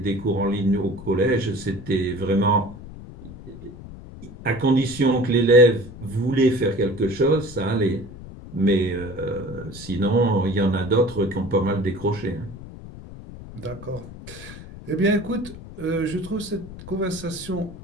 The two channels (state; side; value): noise; left; rumble, 15 dB below the sound